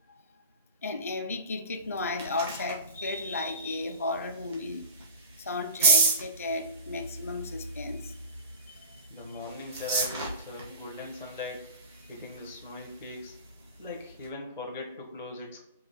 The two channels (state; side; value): inverted; both; correlation -0.36